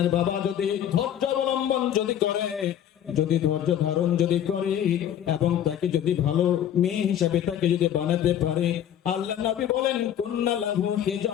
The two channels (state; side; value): quieter; right; 10.3 dB